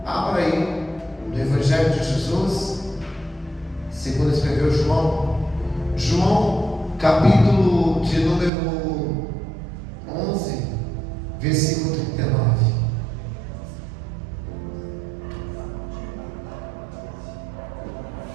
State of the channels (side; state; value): left; drops out; at 8.5 s